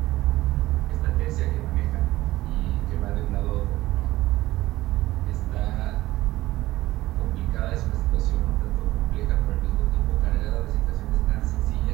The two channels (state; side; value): quieter; left; 16.9 dB